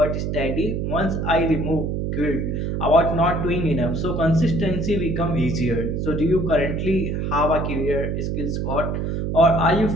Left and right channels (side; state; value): right; noise; hum, 1 dB below the sound